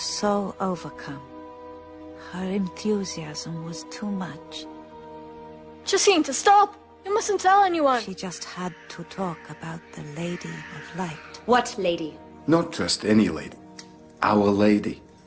so overcome. Her enthusiasm was too much. Jacinta, stop! You mustn't tell anyone. She just had to talk about the Lady of Light. What lady? Not just any lady. Our Lady.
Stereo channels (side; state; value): both; identical; correlation 1.00